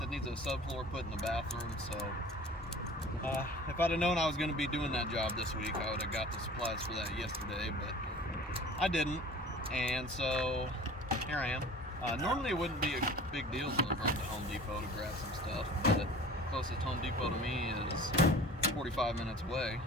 that needs a subfloor put in the bathroom, so if I'd have known I was going to be doing that job this week, I would have got the supplies for that yesterday, but I didn't, and so here I am. Normally it wouldn't be a big deal to run to Home Depot to grab some stuff, but closest Home Depot to me is 45 minutes away.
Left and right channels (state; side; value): normal; both; correlation 0.43